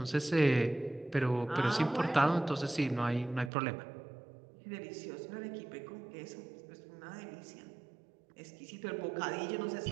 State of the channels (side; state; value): left; drops out; at 3.5 s